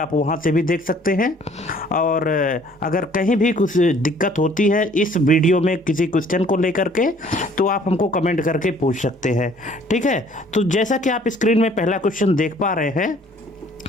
वहां से भी देख सकते हैं। और अगर कहीं भी कुछ दिक्कत होती है इस वीडियो में किसी क्वेश्चन को लेकर के, तो आप हमको कमेंट करके पूछ सकते हैं, ठीक है। तो जैसा कि आप स्क्रीन में पहला क्वेश्चन देख पा रहे हैं,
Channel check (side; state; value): both; normal; correlation 0.56